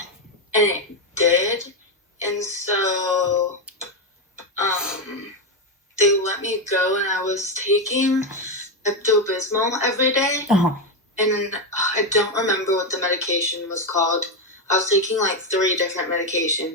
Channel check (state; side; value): normal; both; correlation 0.08